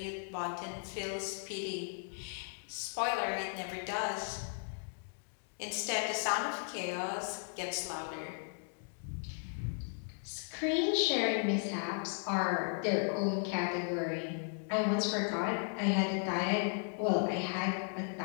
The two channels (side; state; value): right; silent; 54 dB below the other